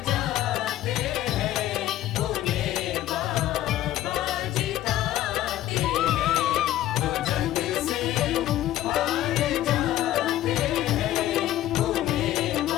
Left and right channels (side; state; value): right; quieter; 13.9 dB